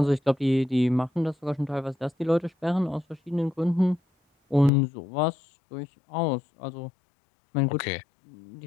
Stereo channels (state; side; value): drops out; right; at 4.7 s